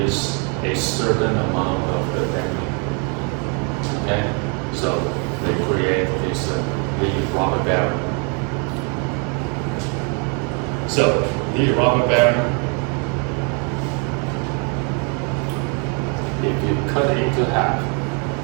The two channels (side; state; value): left; quieter; 36.1 dB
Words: a certain amount of the damping. Okay, so they create this lead rubber bearing. So lead rubber bearing, if you cut it into half,